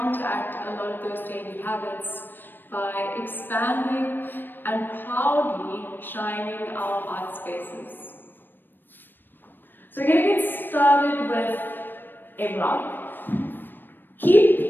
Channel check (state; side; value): late; right; 0.094 ms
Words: a lot of those daily habits by expanding and proudly shining our heart spaces. So we're going to get started with a block.